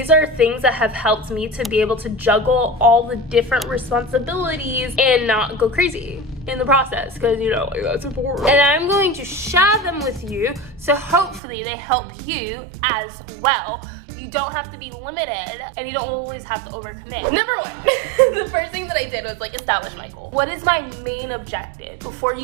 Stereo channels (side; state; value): left; drops out; at 11.4 s